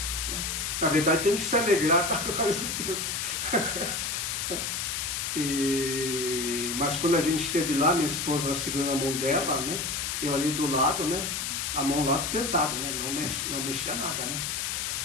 Na verdade, tem que se alegrar para a glória de Deus. Mas quando a gente esteve lá, minha esposa segurando a mão dela, né? Eu ali do lado, né? A mão lá pesada, né? Não mexia nada, né?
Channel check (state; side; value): noise; left; hiss, 2 dB below the sound